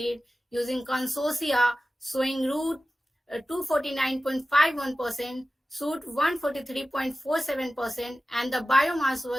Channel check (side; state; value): both; normal; correlation 0.95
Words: using consortia showing root 249.51%, shoot 143.47%, and the biomass